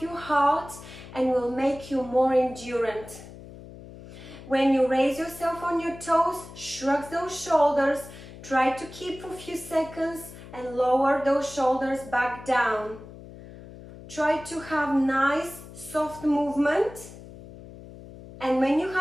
your heart and will make you more endurant. When you raise yourself on your toes, shrug those shoulders. Try to keep for a few seconds and lower those shoulders back down. Try to have nice, soft movement. And when you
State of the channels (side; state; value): left; noise; hum, 16 dB below the sound